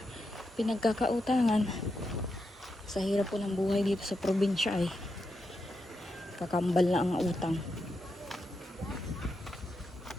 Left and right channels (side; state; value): both; normal; correlation 0.86